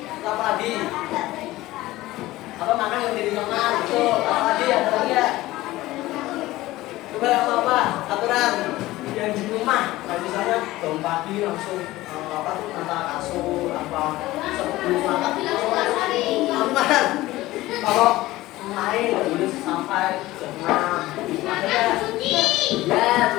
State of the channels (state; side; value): quieter; right; 17.5 dB